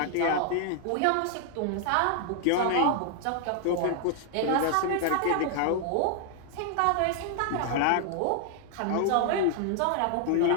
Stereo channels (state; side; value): different; both; correlation 0.00